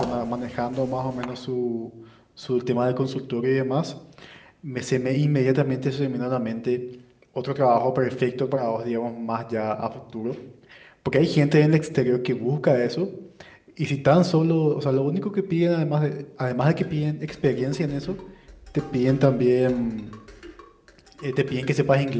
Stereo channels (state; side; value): identical; both; correlation 1.00